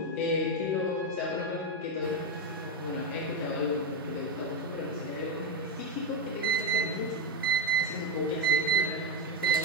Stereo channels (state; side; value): normal; both; correlation 0.08